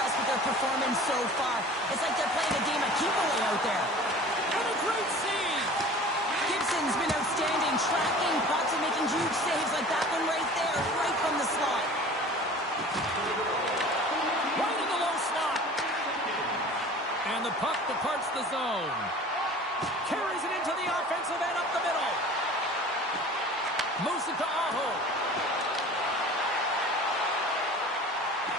with their performance so far. It's like they're playing a game of keep-away out there. And a great save. Gibson's been outstanding, tracking pucks and making huge saves like that one right there, right from the slot. Right in the low slot. And the puck departs the zone. Carries it into the offensive end up the middle. Moves it to Aho.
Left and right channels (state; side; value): normal; both; correlation 0.42